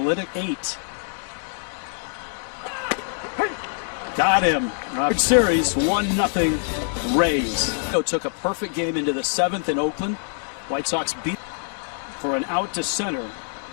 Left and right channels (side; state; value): right; silent; 59 dB below the other